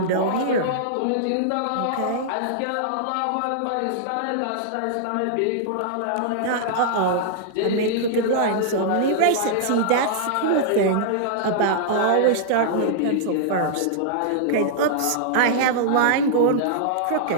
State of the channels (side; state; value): both; different; correlation -0.02